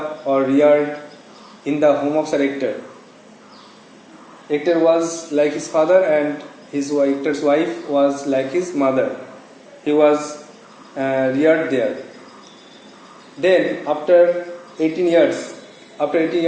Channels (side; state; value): both; identical; correlation 1.00